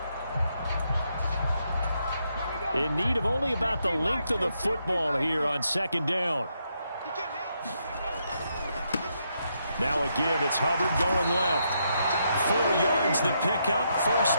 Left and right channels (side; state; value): both; inverted; correlation -0.79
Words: In need of only about the length of the football here on 2nd down. Now a give. It's Hubbard going left. 4 yards the pickup, 1st